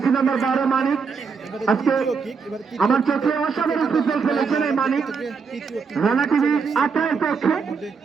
নাম্বার 12 মানিক। আজকে আমার চোখে অসাধারণ ফুটবল খেলেছেন এই মানিক। রানাটিভি আত্রায়ের পক্ষে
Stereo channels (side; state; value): left; quieter; 5.4 dB